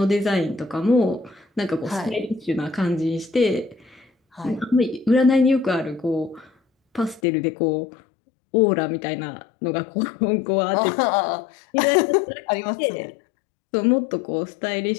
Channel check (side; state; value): right; drops out; at 7.2 s